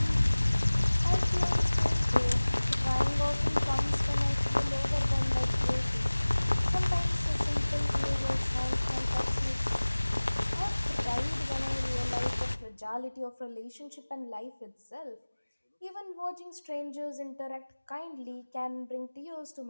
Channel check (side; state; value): both; inverted; correlation -1.00